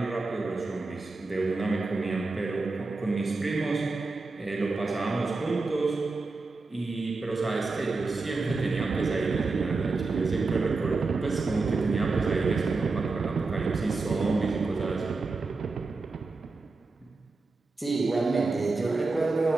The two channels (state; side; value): quieter; left; 3.7 dB